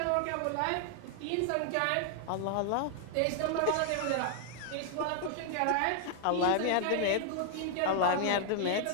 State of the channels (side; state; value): both; different; correlation 0.00